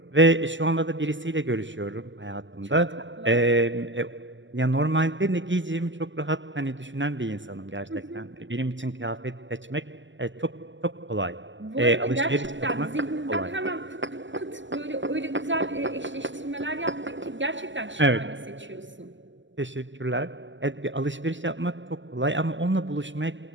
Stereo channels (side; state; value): left; late; 0.54 ms